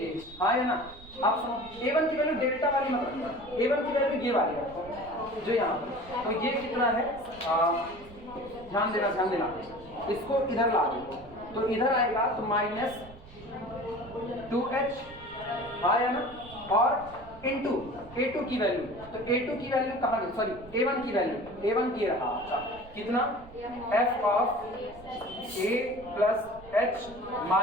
हाँ है ना। आप सुनो, A1 की वैल्यू डेल्टा वाली मत रखना, A1 की वैल्यू ये वाली रखो जो यहाँ पर, तो ये कितना है, ध्यान देना, इसको इधर ला दो, तो इधर आएगा तो माइनस 2h आया ना, और इनटू A2 की वैल्यू, तो A2 की वैल्यू कहाँ गई, सॉरी A1 की वैल्यू, A1 की रहा, अच्छा कितना, f of a plus h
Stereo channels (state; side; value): noise; right; rumble, 19 dB below the sound